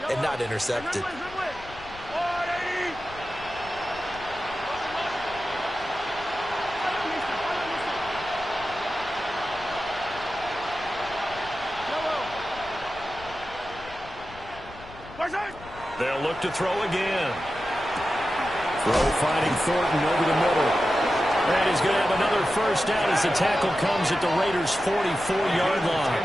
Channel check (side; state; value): left; noise; rumble, 18 dB below the sound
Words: and not intercepted. They'll look to throw again. Throw finding Thornton over the middle. And he's going to have another first down as the tackle comes at the Raiders' 44-yard line.